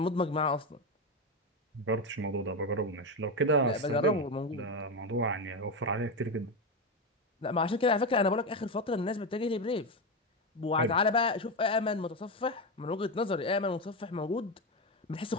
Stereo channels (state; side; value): normal; both; correlation 0.13